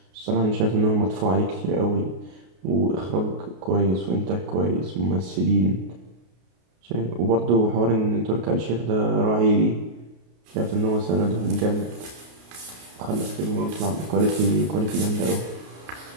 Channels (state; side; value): late; left; 33 ms